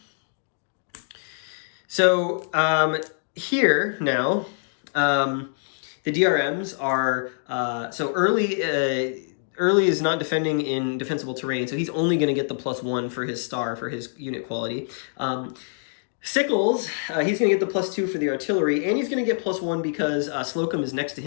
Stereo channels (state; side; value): silent; right; digital silence